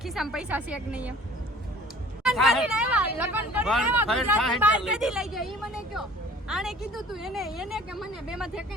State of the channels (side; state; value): both; normal; correlation 0.49